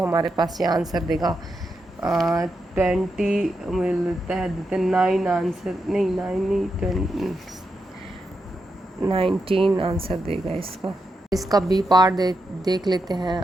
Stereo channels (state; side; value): normal; both; correlation 0.85